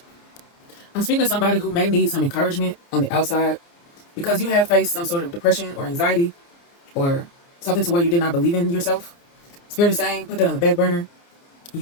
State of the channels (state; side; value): late; right; 29 ms